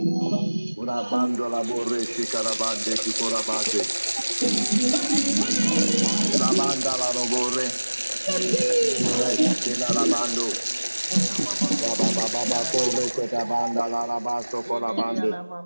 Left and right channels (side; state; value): both; inverted; correlation -1.00